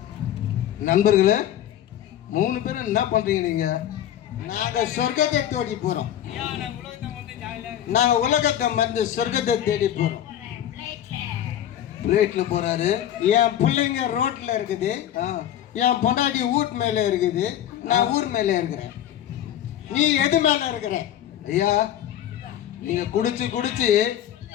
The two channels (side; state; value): right; quieter; 11.2 dB